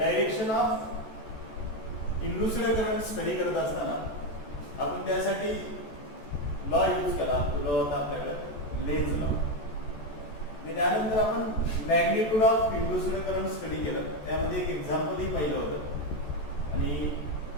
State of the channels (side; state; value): right; late; 14 ms